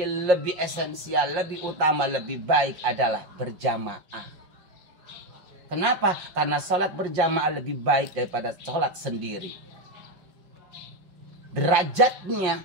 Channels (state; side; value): late; left; 5.5 ms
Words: lebih esensial, lebih utama, lebih baik adalah berjamaah. Kenapa? Karena sholat berjamaah lebih baik daripada sholat sendiri. Derajatnya